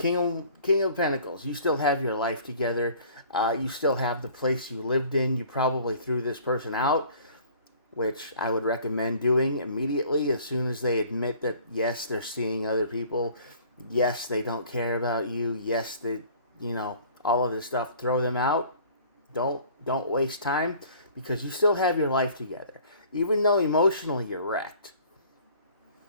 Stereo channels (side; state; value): both; inverted; correlation -0.51